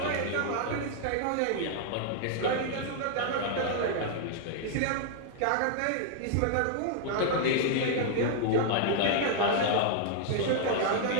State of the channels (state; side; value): different; both; correlation 0.00